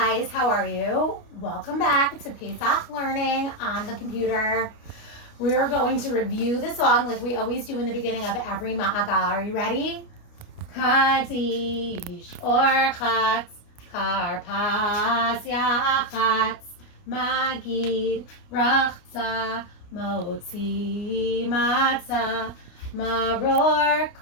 how are you? Welcome back to Pesach Learning on the computer. We are going to review the song like we always do in the beginning of every Maagal. Are you ready? Kadish Orchatz Karpas Yachatz Maggid Rachza Motzi Matzah Maror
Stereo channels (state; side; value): late; right; 29 ms